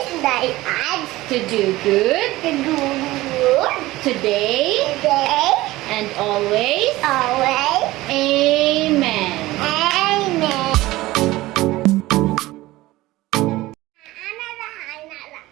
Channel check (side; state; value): left; quieter; 18.1 dB